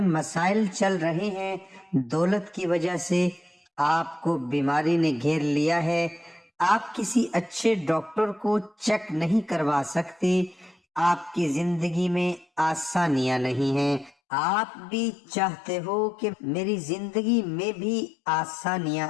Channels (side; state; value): right; drops out; at 14.1 s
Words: مسائل چل رہے ہیں، دولت کی وجہ سے آپ کو بیماری نے گھیر لیا ہے، آپ کسی اچھے ڈاکٹر کو چیک نہیں کروا سکتے، آپ کی زندگی میں آسانیاں نہیں ہیں، آپ بھی چاہتے ہو کہ میری زندگی میں بھی آسانیاں